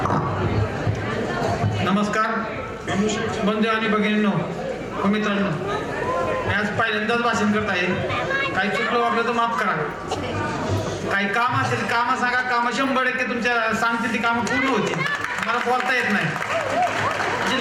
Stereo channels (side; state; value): both; identical; correlation 1.00